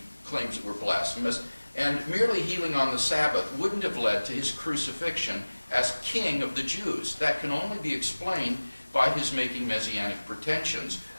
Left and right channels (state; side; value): inverted; both; correlation -1.00